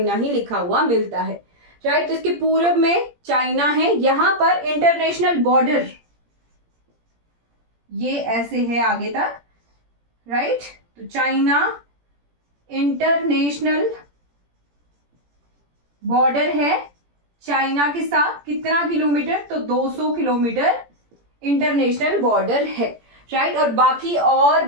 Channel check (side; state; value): left; late; 17 ms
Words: ही लिखा हुआ मिलता है, राइट। तो इसके पूर्व में चाइना है, यहां पर इंटरनेशनल बॉर्डर ये ऐसे है आगे तक, राइट। तो चाइना इंटरनेशनल बॉर्डर है चाइना के साथ, कितना किलोमीटर, तो 200 किलोमीटर इंटरनेशनल बॉर्डर है, राइट। और बाकी और